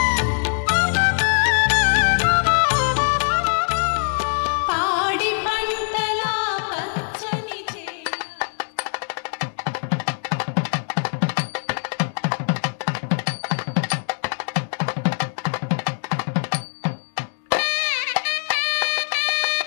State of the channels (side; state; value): right; silent; digital silence